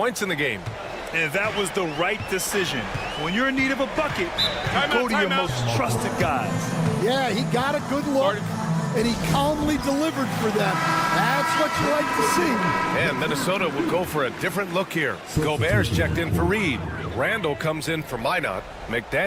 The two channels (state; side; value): identical; both; correlation 1.00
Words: in the game. And that was the right decision. When you're in need of a bucket, you go to your most trusted guys. Yeah, he got a good look, and he calmly delivered for them. That's what you like to see. And Minnesota will go for a different look here. Gobert's checked in for Reed. Randall comes in for Minot.